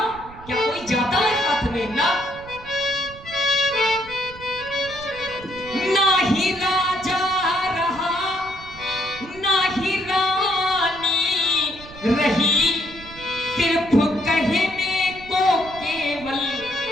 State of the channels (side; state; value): right; noise; rumble, 18 dB below the sound